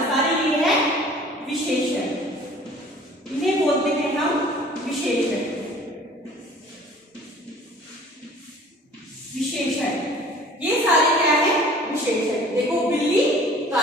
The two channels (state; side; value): normal; both; correlation 0.49